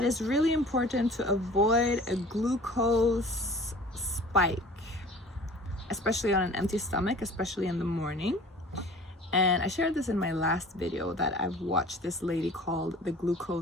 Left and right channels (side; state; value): both; normal; correlation 0.45